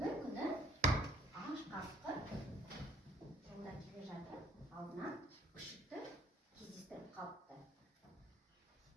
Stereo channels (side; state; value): both; normal; correlation 0.58